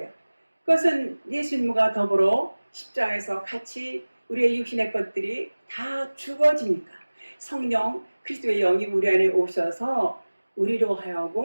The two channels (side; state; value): both; inverted; correlation -1.00